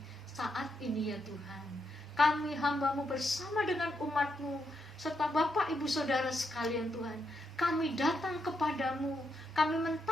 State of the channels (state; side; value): normal; both; correlation 0.81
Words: Saat ini ya Tuhan, kami hamba-Mu bersama dengan umat-Mu, serta Bapak Ibu Saudara sekalian Tuhan, kami datang kepadamu, kami